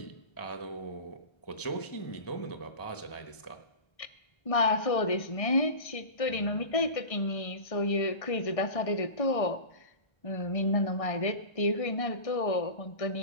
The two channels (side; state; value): right; late; 1.6 ms